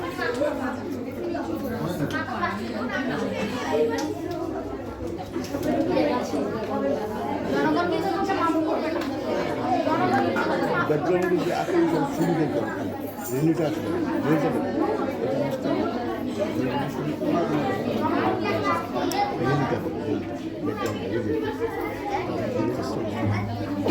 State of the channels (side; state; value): both; identical; correlation 1.00